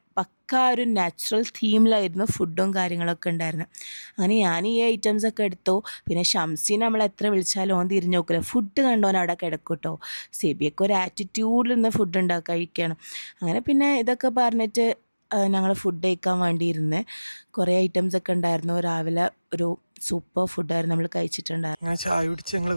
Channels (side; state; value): both; inverted; correlation -1.00